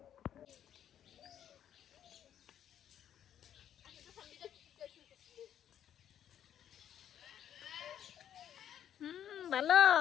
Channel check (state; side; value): quieter; right; 10.1 dB